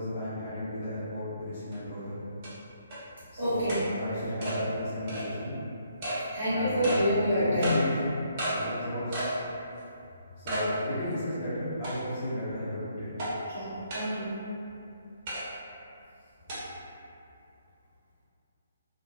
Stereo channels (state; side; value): inverted; both; correlation -0.71